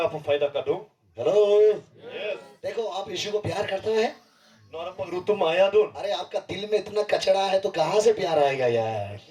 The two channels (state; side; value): identical; both; correlation 1.00